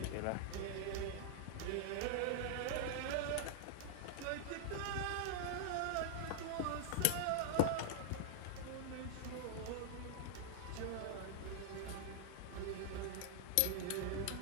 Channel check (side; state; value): both; different; correlation -0.01